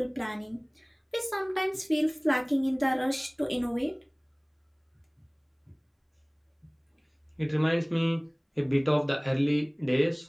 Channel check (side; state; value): both; identical; correlation 1.00